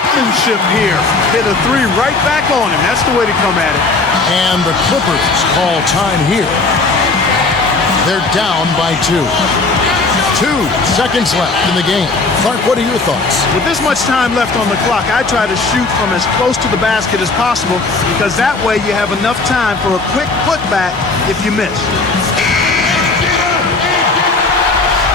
here. Hit a three right back on him. That's the way to come at it. And the Clippers call time here. They're down by 2. 2 seconds left in the game. Clark, what are your thoughts? With this much time left on the clock, I try to shoot from as close to the basket as possible because that way you have enough time for a quick putback if you miss.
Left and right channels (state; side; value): quieter; right; 3.7 dB